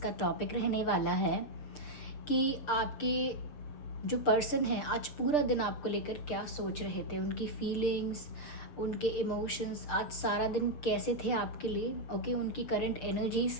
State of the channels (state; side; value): late; right; 6.8 ms